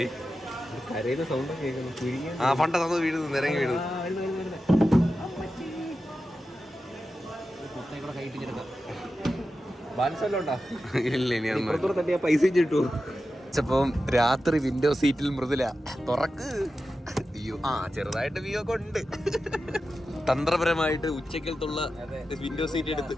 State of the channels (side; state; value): both; normal; correlation 0.92